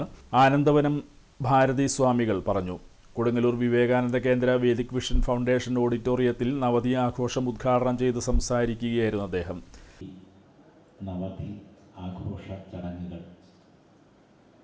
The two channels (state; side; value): identical; both; correlation 1.00